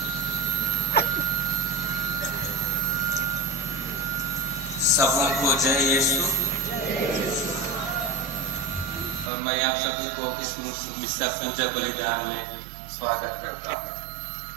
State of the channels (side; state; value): left; drops out; at 9.3 s